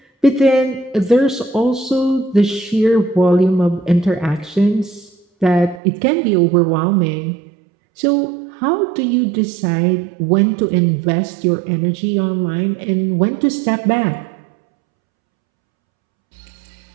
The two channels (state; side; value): drops out; left; at 5.8 s